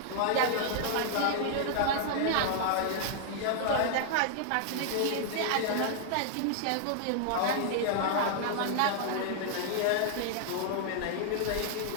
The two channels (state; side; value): different; both; correlation -0.01